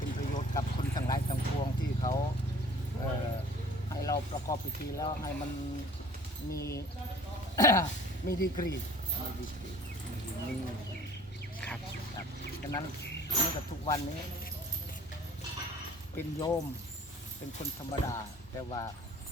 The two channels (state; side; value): normal; both; correlation 0.50